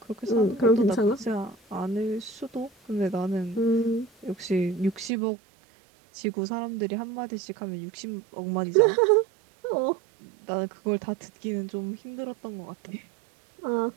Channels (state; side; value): drops out; left; at 5.1 s